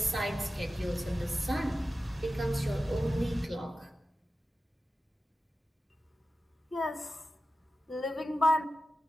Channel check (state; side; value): normal; both; correlation 0.93